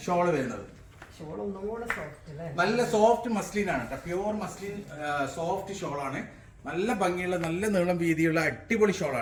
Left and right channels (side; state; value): both; identical; correlation 1.00